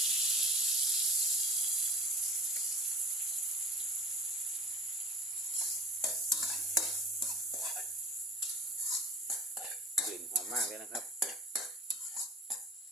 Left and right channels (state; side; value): normal; both; correlation 0.38